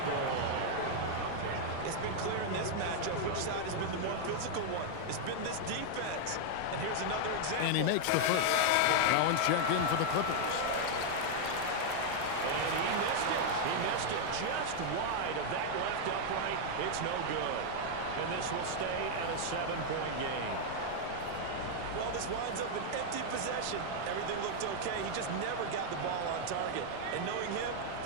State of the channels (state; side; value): different; both; correlation 0.00